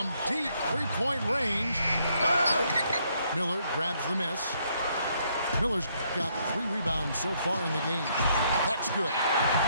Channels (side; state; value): both; inverted; correlation -0.71